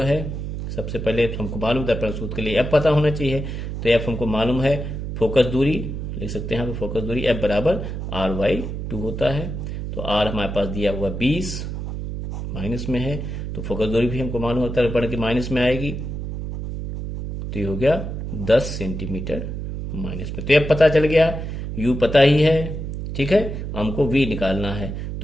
है, सबसे पहले तो हमको मालूम दर्पण सूत्र के लिए f पता होना चाहिए। तो f हमको मालूम है, फोकस दूरी लिख सकते हैं, फोकस दूरी f बराबर r/2 होता है। तो r हमारे पास दिया हुआ 20 माइनस में है, तो फोकस दूरी भी हमको मालूम होता है दर्पण की माइनस में आएगी। तो ये हो गया 10 सेंटीमीटर माइनस में। तो ये पता चल गया, u पता ही है, ठीक है, हमको v निकालना है।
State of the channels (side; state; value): right; noise; hum, 5 dB below the sound